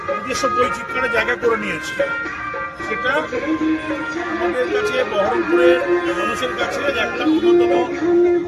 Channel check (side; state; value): both; identical; correlation 1.00